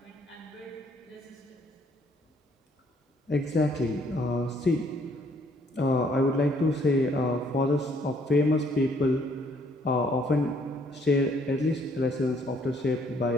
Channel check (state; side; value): normal; both; correlation 0.64